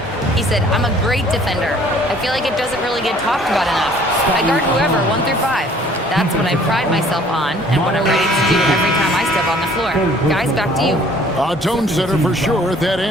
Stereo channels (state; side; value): normal; both; correlation 0.56